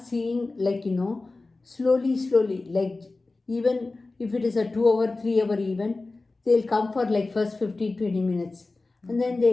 seeing slowly, like even if it is a 2 hour, 3 hour event, they'll come for first 15-20 minutes and then they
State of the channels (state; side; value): quieter; right; 3.4 dB